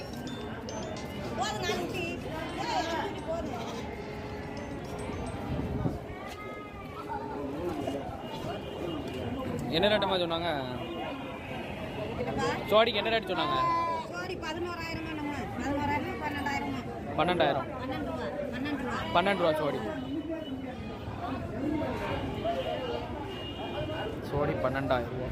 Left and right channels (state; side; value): identical; both; correlation 1.00